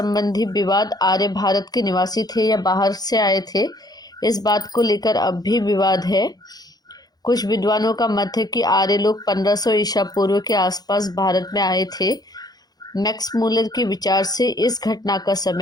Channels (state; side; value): late; right; 0.19 ms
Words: विवाद, आर्य भारत के निवासी थे या बाहर से आए थे, इस बात को लेकर अब भी विवाद है। कुछ विद्वानों का मत है कि आर्य लोग 1500 ईसा पूर्व के आसपास भारत में आए थे। मैक्स मूलर के विचार से इस घटना का